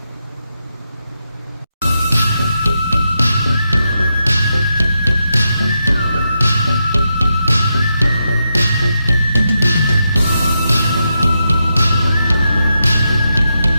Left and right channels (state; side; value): inverted; both; correlation -0.85